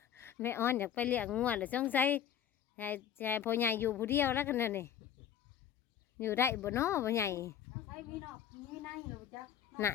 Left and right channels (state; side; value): quieter; right; 9.5 dB